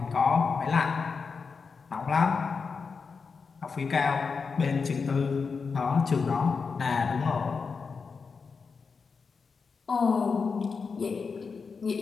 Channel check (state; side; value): quieter; right; 5.2 dB